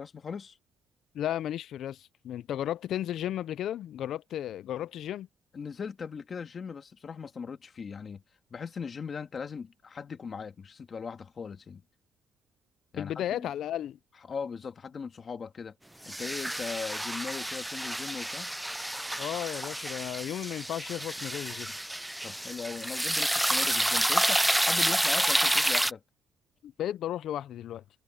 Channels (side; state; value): both; normal; correlation 0.89